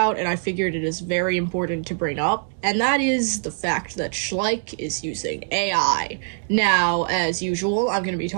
and I figured it is very important to bring up, and that is the fact that Schleich is using AI. Now, as usual, I'm going to be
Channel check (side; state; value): left; silent; digital silence